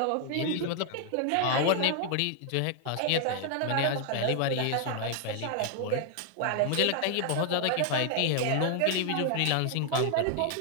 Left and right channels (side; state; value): both; different; correlation 0.00